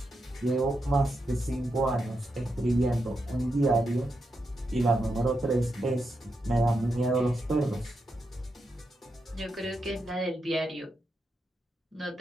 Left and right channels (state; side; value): normal; both; correlation 0.85